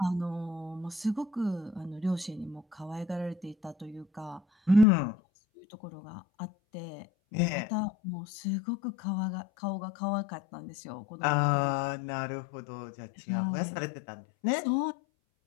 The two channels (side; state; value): right; drops out; at 4.9 s